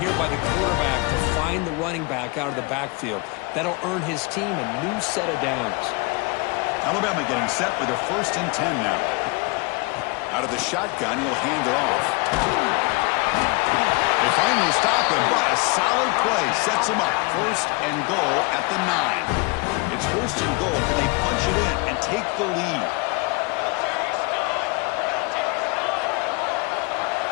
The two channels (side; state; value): right; quieter; 27.9 dB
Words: by the quarterback to find the running back out of the backfield. That'll earn his team a new set of downs. Alabama getting set with a 1st and 10 now. Out of the shotgun, he'll hand it off. They finally stop him, but a solid play sets him up. 1st and goal at the 9. It's 1st and goal. Can they punch it in and take the lead?